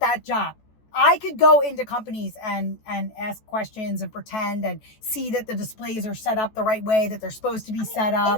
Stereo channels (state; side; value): late; right; 14 ms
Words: job. I could go into companies and ask questions and pretend and see that the displays are set up the right way, that they're supposed to be set